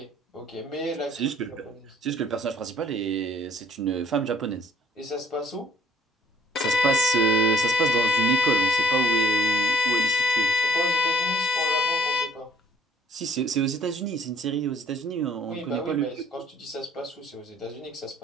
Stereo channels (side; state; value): both; normal; correlation 0.60